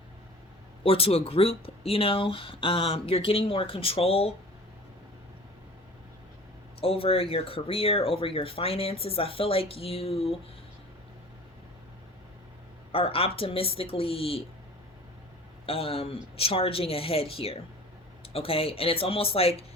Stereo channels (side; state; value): both; normal; correlation 0.42